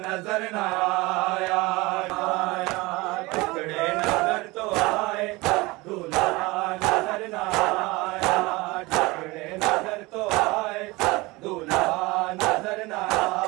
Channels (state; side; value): quieter; left; 22.6 dB